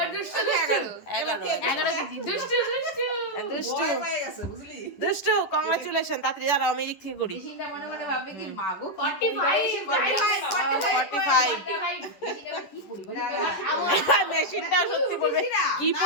কেজি। দুষ্টু দুষ্টু, কংগ্রাচুলেশন। তাড়াতাড়ি দাঁড়াও, আমি এদিক থেকে করি। 45। মেশিনটা সত্যি বলবে কি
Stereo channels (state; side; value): late; right; 11 ms